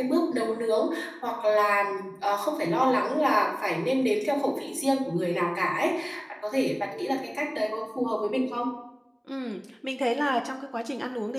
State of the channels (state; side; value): identical; both; correlation 1.00